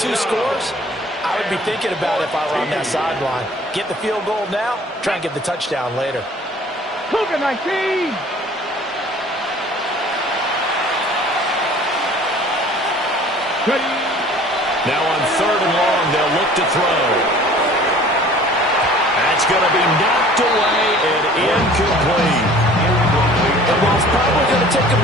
scores? I would be thinking about it if I were on that sideline. Get the field goal now, try and get the touchdown later. Cougar 19. Now on 3rd and long, they'll look to throw. That's going to be knocked away and incomplete. And while it's probably going to take a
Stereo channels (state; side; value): normal; both; correlation 0.49